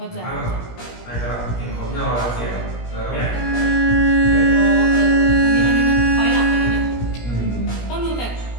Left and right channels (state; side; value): late; right; 17 ms